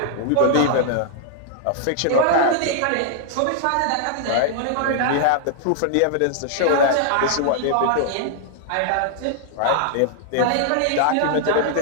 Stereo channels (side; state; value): both; different; correlation -0.01